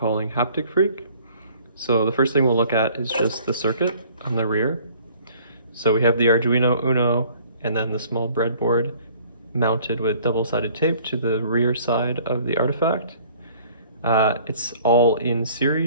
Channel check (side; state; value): both; inverted; correlation -0.55